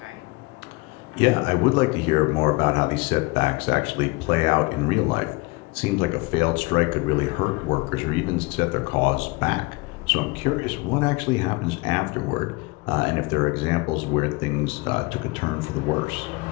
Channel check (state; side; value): quieter; right; 24.7 dB